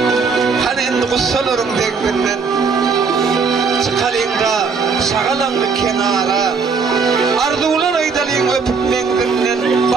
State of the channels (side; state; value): left; quieter; 5.1 dB